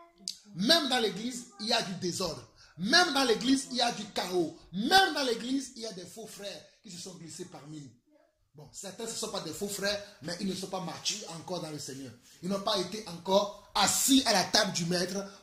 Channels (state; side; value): identical; both; correlation 1.00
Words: Même dans l'église, il y a du désordre. Même dans l'église, il y a du chaos. Même dans l'église, il y a des faux frères qui se sont glissés parmi nous. Bon, certains ne sont pas des faux frères, mais ils ne sont pas matures encore dans le Seigneur. Ils n'ont pas été encore assis à la table du maître